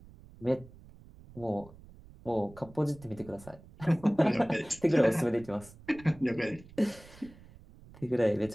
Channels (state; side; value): noise; right; rumble, 21 dB below the sound